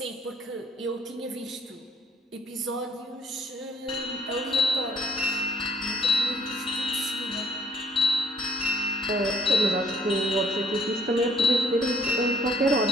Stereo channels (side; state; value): both; normal; correlation 0.61